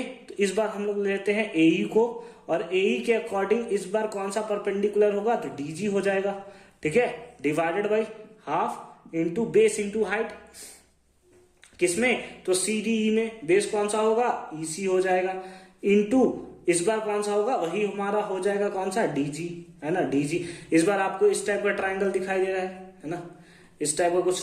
तो इस बार हम लोग लेते हैं AE को, और AE के अकॉर्डिंग इस बार कौन सा परपेंडिकुलर होगा, तो DG हो जाएगा। ठीक है, divided by half into base into height, किसमें, तो CDE में। बेस कौन सा होगा, EC हो जाएगा, इंटू इस बार कौन सा होगा, वही हमारा हो जाएगा कौन सा, DG, है ना, DG। इस बार आपको इस टाइप का ट्राइंगल दिखाई दे रहा है ना, इस टाइप का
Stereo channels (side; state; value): both; identical; correlation 1.00